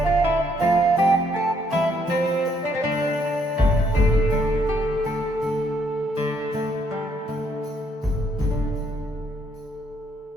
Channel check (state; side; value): normal; both; correlation 0.70